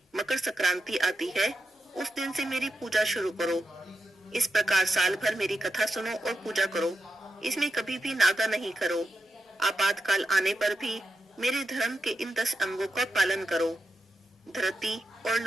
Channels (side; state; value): both; normal; correlation 0.89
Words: मकर संक्रांति आती है, उस दिन से मेरी पूजा शुरू करो। इस प्रकार साल भर मेरी कथा सुनो और पूजा करो। इसमें कभी भी नागा नहीं करो। आपातकाल आने पर भी मेरे धर्म के इन 10 अंगों का पालन करो। धृति और